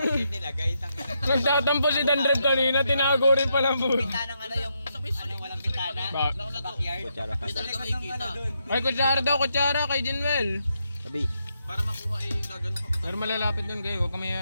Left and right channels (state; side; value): inverted; both; correlation -0.80